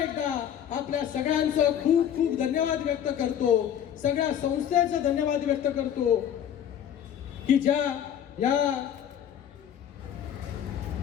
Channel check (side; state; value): right; quieter; 9.6 dB